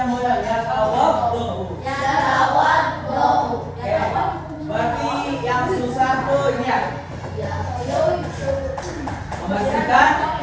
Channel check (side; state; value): both; identical; correlation 1.00